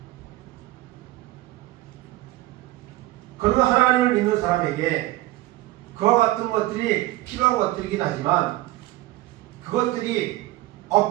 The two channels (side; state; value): left; quieter; 17.1 dB